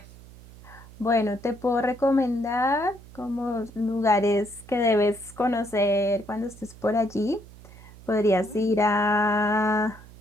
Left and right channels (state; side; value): noise; right; hum, 20 dB below the sound